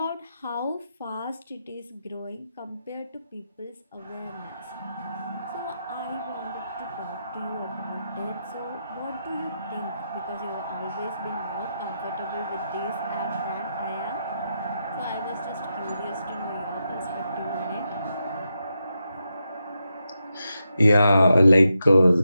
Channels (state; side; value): inverted; both; correlation -0.85